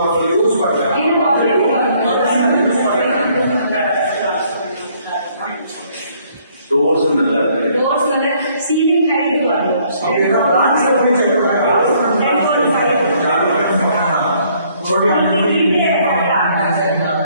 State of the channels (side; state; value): both; inverted; correlation -0.64